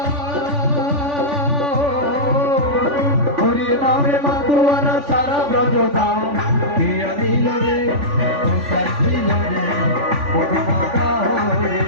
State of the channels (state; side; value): late; left; 3.5 ms